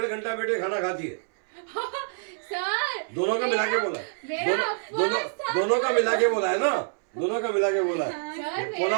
घंटा बेटे खाना खाती है। सर दोनों का मिला के बोला है, दोनों का मिला के बोला है ना, दोनों का मिला के बोला है। सर पौना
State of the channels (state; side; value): silent; left; 61 dB below the other